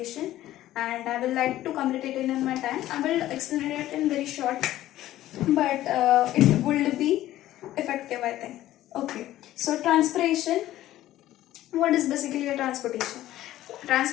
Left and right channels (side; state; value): right; quieter; 14.3 dB